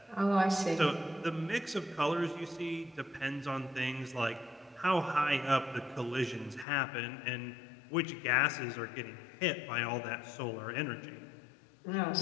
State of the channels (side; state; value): right; drops out; at 6.7 s